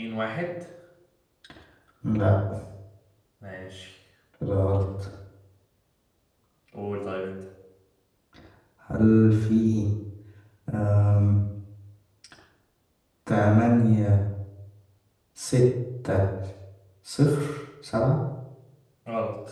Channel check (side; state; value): both; identical; correlation 1.00